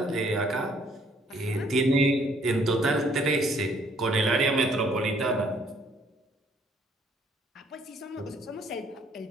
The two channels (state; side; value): normal; both; correlation 0.63